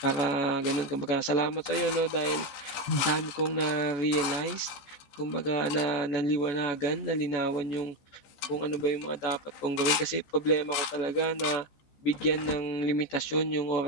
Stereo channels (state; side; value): late; right; 14 ms